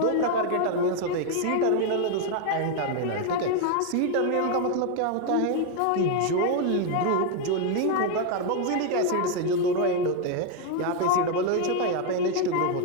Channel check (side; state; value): both; different; correlation 0.01